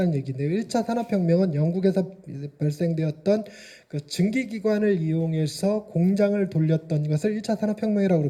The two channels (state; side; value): identical; both; correlation 1.00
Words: 얘기인데요. 1차 산업혁명은 영국에서 발생되었던 그 증기기관을 이용해서 공장을 돌렸던 것을 1차 산업혁명이라고